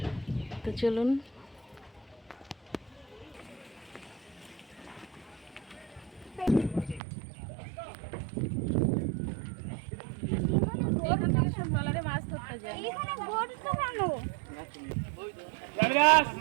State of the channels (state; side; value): drops out; left; at 7.0 s